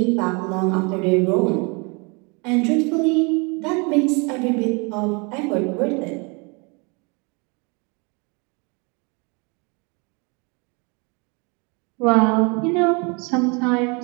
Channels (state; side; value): quieter; left; 30.9 dB